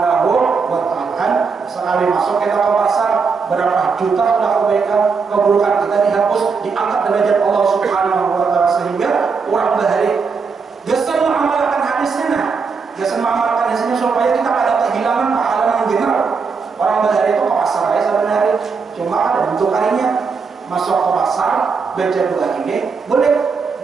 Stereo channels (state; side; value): quieter; left; 5.2 dB